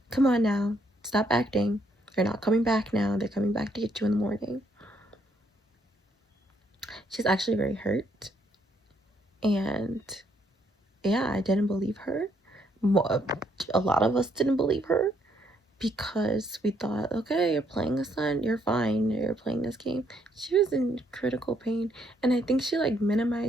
come on now, stop acting. They're not coming back now. They're coming back to get you in the morning. She's actually very hurt. And yeah, I didn't believe her. A lot of us didn't believe her because we thought, okay, you're playing a son, you're fine, you're playing this game. She was in critical pain, and I think she like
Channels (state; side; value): normal; both; correlation 0.71